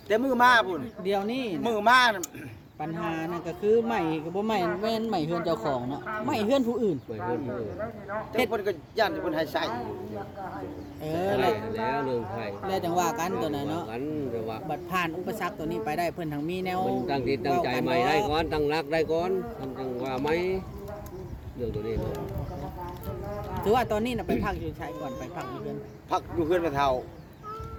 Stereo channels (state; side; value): identical; both; correlation 1.00